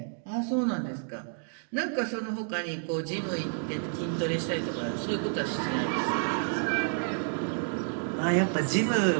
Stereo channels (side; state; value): left; silent; 58 dB below the other